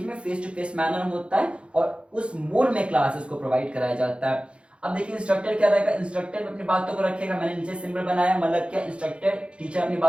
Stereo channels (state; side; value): late; left; 0.058 ms